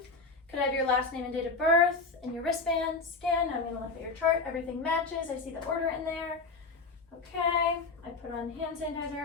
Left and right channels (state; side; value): quieter; right; 3.9 dB